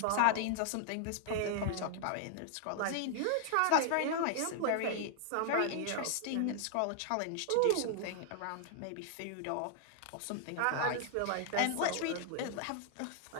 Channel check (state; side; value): different; both; correlation 0.00